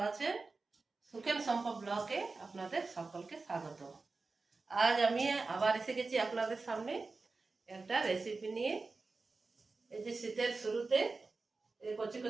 আছেন। সুখেন সম্ভব ব্লগে আপনাদের সকলকে স্বাগত। আজ আমি আবার এসে গেছি আপনাদের সামনে একটা রেসিপি নিয়ে। এই যে শীতের শুরুতে এই কচি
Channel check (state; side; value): quieter; left; 3.9 dB